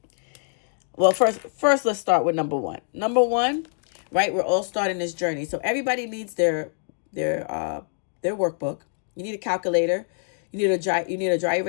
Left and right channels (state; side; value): silent; right; digital silence